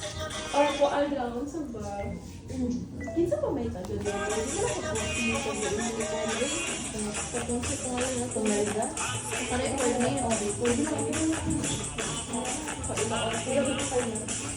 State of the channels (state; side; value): identical; both; correlation 1.00